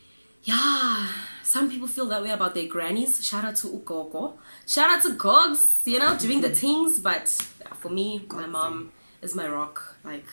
yeah, some people feel that way about their grannies. Shout out to Ukoko. Shout out to Gogs, you know, doing the things. But for me, my mom is my rock. Like,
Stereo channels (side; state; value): both; inverted; correlation -1.00